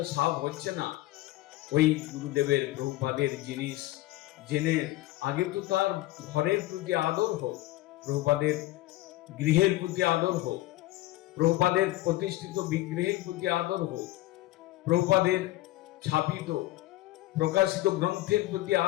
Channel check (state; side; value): quieter; right; 17.2 dB